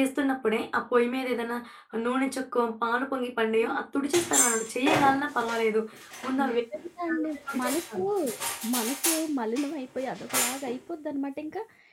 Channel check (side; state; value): both; identical; correlation 1.00